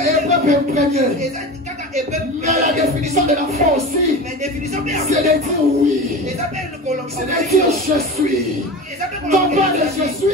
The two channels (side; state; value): both; normal; correlation 0.30